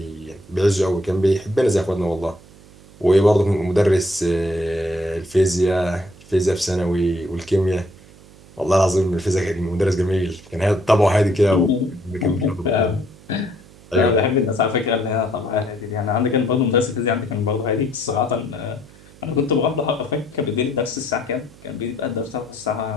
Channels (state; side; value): noise; right; hum, 23 dB below the sound